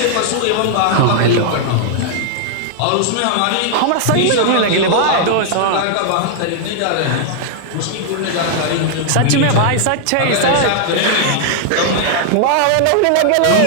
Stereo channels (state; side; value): different; both; correlation -0.01